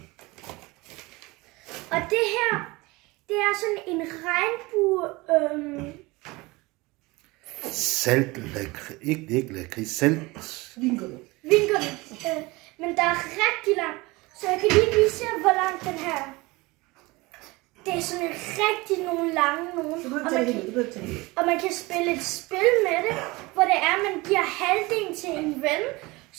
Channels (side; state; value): left; quieter; 22.9 dB